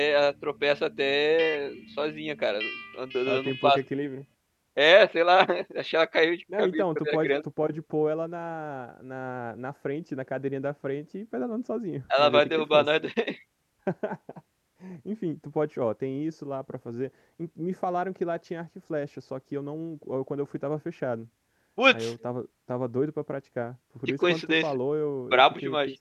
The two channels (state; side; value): identical; both; correlation 1.00